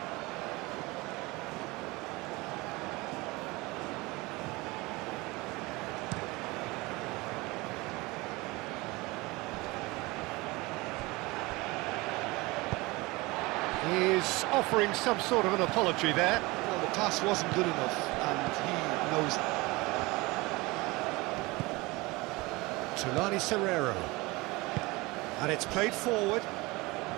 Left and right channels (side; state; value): left; quieter; 22.9 dB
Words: He's offering some sort of an apology there. Well, the pass wasn't good enough, and he knows it. Tulani Serrero. And it's played forward.